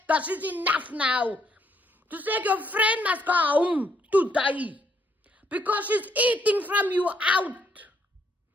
that is enough now. Toen zeg ik, your friend must go home today. Because she's eating from you out.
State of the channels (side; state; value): both; normal; correlation 0.71